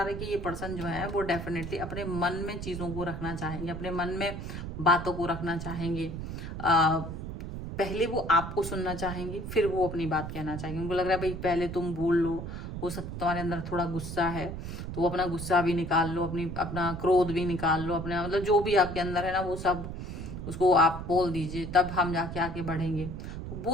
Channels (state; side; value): noise; right; rumble, 7 dB below the sound